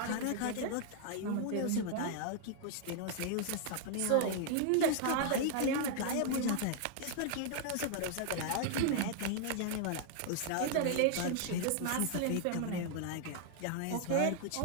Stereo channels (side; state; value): both; different; correlation 0.00